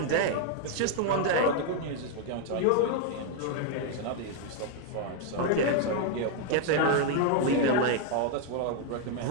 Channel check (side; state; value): both; different; correlation 0.00